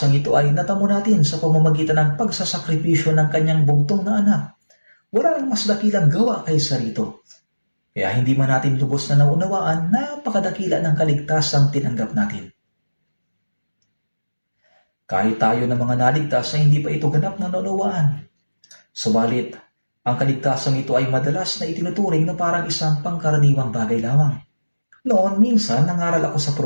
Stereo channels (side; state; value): both; inverted; correlation -1.00